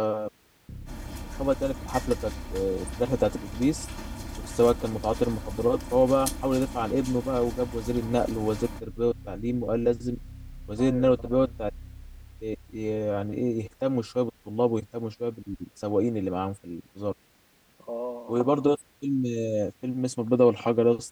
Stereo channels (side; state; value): both; identical; correlation 1.00